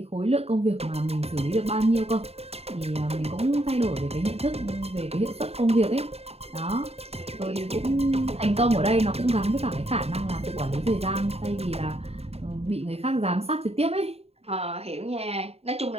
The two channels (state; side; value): late; left; 0.30 ms